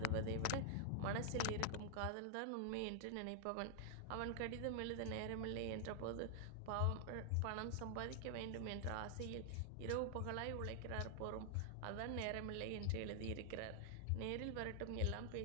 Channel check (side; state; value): both; different; correlation 0.00